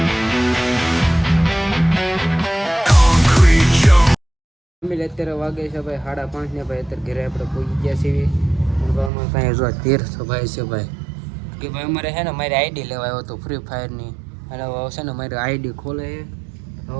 અત્યારે વાગે છે ભાઈ 5:30 ને ભાઈ અત્યારે ઘરે આપણે પહોંચી ગયા છીએ. કાંઈ જો તીર્થ ભાઈ છે ભાઈ કે ભાઈ અમારે છે ને મારી આઈડી લેવા આવ્યો હતો ફ્રી ફાયરની. અને હવે છે ને મારી આઈડી ખોલે છે.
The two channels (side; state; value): left; drops out; at 9.1 s